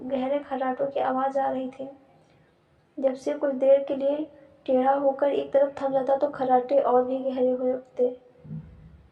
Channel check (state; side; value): identical; both; correlation 1.00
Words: गहरे खर्राटों की आवाज आ रही थी। जब सिर कुछ देर के लिए टेढ़ा होकर एक तरफ थम जाता तो खर्राटे और भी गहरे हो उठते,